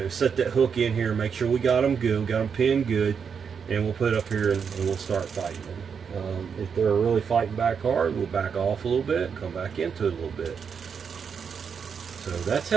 set that hook in here and make sure we got them good, got them pinned good, and we'll put it up here and we'll start fighting them. If they're really fighting back hard, we'll back off a little bit and come back into it a little bit. So that's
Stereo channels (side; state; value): left; quieter; 6.6 dB